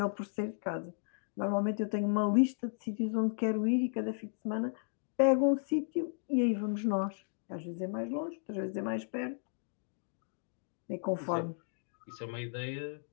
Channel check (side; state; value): right; silent; digital silence